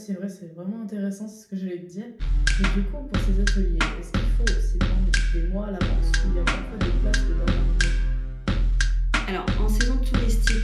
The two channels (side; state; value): both; identical; correlation 1.00